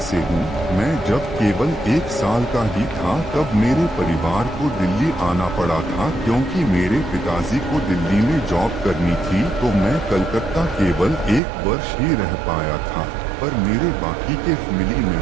से हूँ। मैं जब केवल 1 साल का ही था तब मेरे परिवार को दिल्ली आना पड़ा था क्योंकि मेरे पिताजी को दिल्ली में जॉब करनी थी, तो मैं कलकत्ता केवल 1 वर्ष ही रह पाया था। पर मेरे बाकी के फैमिली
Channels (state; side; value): drops out; left; at 11.4 s